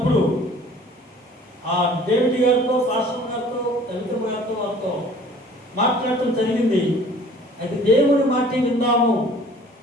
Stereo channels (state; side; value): normal; both; correlation 0.50